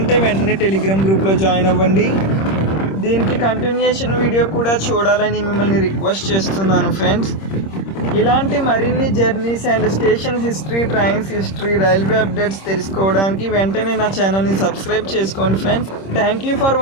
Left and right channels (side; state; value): right; late; 26 ms